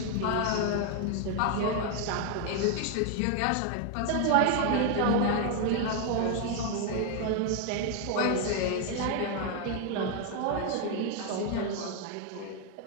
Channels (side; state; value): both; different; correlation 0.00